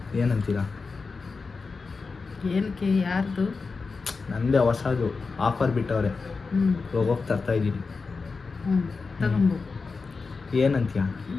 ಏನಂತೀರಾ? ಏನಕ್ಕೆ? ಯಾರ್ದು? ನಂದೇ ಹೊಸದು ಆಫರ್ ಬಿಟ್ಟವ್ರೆ, ಹೋಗೋಕೆ ತರ್ತಾ ಇದ್ದೀನಿ. ಏನಂತೀಯ?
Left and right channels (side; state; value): right; quieter; 4.5 dB